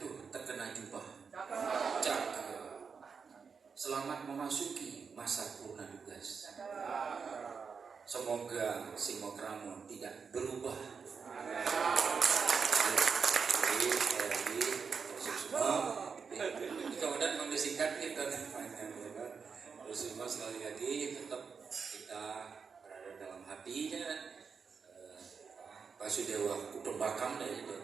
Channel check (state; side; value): quieter; left; 5.7 dB